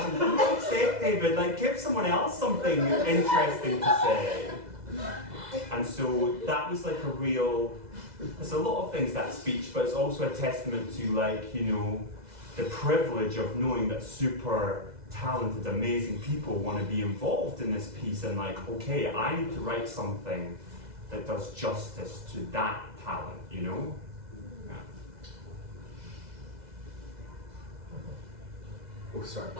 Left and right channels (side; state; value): left; late; 2.0 ms